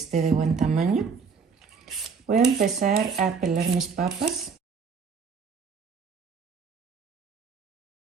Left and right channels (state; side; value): quieter; left; 5.5 dB